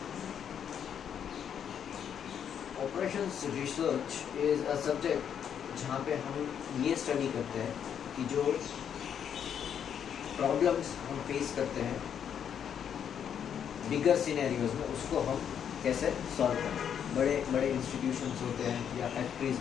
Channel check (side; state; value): right; quieter; 8.4 dB